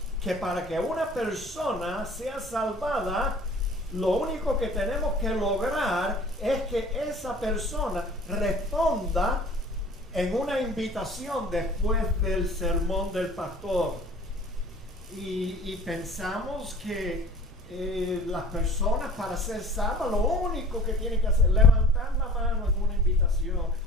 que para que una persona sea salvada, lo único que tenemos que lograr es que esa persona responda en una invitación después del sermón del pastor. Y pensamos que las personas, para ser salvas, lo único que tienen que hacer es levantar la mano en una invitación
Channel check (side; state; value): both; normal; correlation 0.46